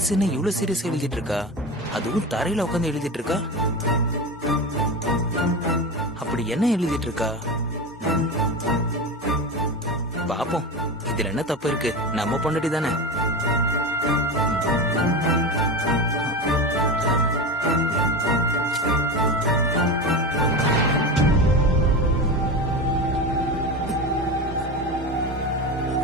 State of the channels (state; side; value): normal; both; correlation 0.24